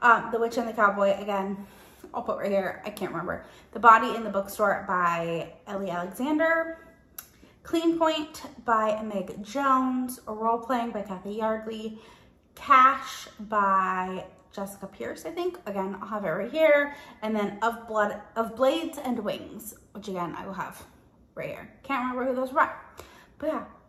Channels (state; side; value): identical; both; correlation 1.00